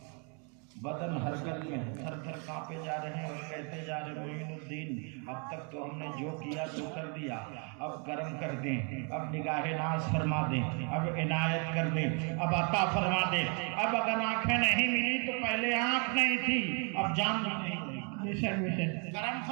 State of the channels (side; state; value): left; quieter; 37.3 dB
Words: بدن حرکت میں تھر تھر کانپے جا رہے ہیں اور کہتے جا رہے معین الدین اب تک تو ہم نے جو کیا تو کر دیا، اب کرم کر دیں، اب نگاہ ناز فرما دیں، اب عنایت کر دیں، اب عطا فرما دیں. اب اگر آنکھیں نہیں ملی تو پہلے آنکھ نہیں تھی، اب جان بھی نہیں تھی. کرم